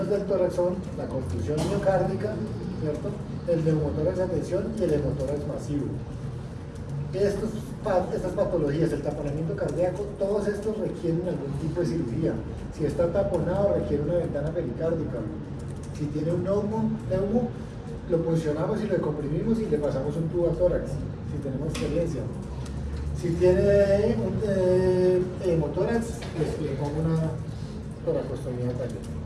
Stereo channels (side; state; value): both; identical; correlation 1.00